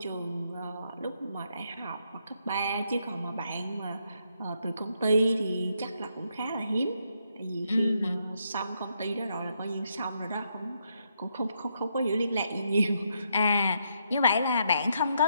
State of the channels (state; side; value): inverted; both; correlation -0.77